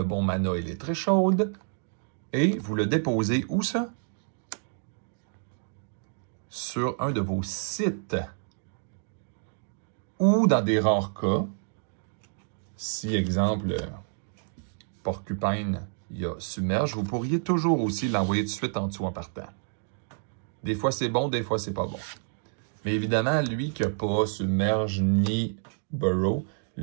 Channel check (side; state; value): left; silent; digital silence